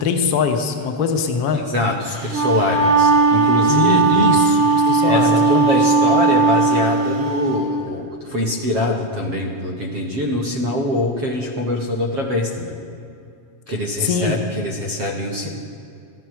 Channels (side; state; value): left; late; 7.4 ms